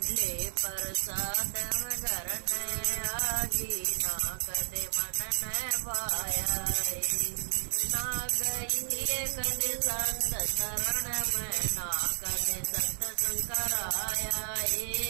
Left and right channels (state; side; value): silent; left; digital silence